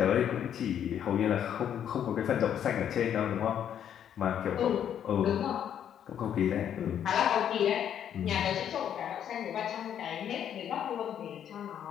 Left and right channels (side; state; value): right; quieter; 9.5 dB